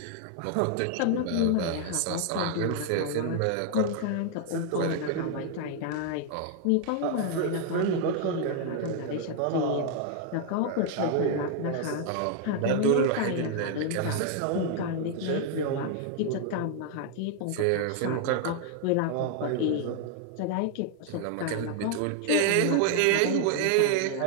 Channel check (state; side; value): different; both; correlation 0.00